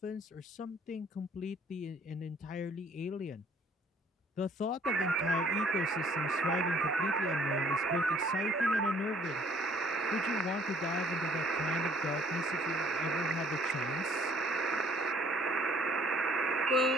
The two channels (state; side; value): normal; both; correlation 0.58